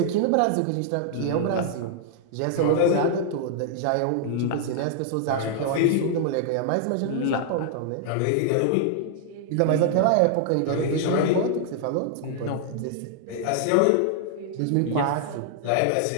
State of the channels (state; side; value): different; both; correlation -0.01